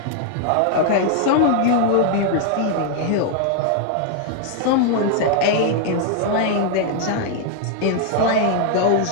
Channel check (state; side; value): different; both; correlation 0.00